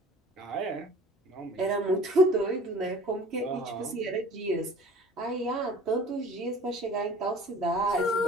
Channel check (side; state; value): both; normal; correlation 0.46